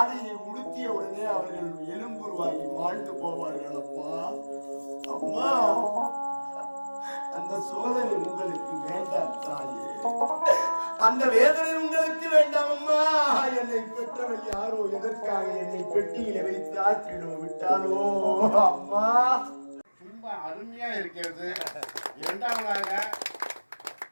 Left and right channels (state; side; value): inverted; both; correlation -1.00